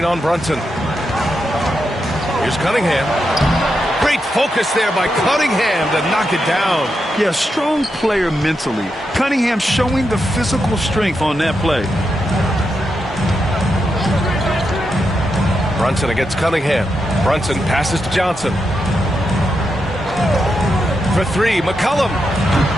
on Brunson. Here's Cunningham. Great focus there by Cunningham to knock it down. Yeah, strong player mentally. Cunningham showing the physical strength on that play. Brunson against Cunningham. Brunson passes to Johnson. For three, McCollum.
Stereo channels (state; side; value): normal; both; correlation 0.85